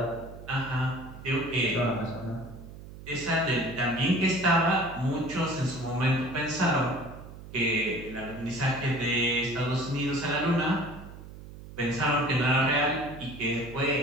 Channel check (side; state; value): right; noise; hum, 15 dB below the sound